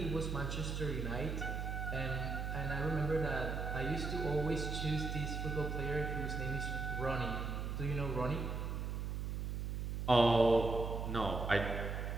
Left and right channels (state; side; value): noise; right; hum, 2 dB below the sound